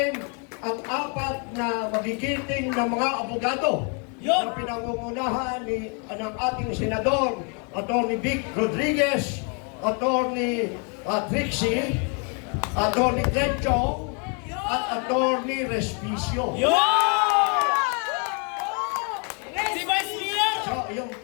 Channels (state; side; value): quieter; right; 37.3 dB